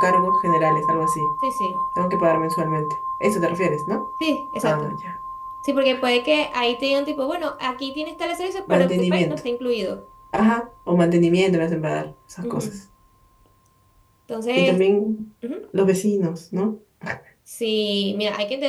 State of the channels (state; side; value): identical; both; correlation 1.00